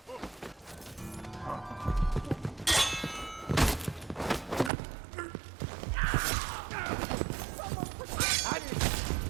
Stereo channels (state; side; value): drops out; left; at 4.7 s